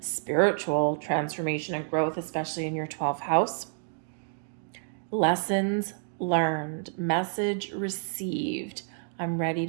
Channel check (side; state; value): left; silent; digital silence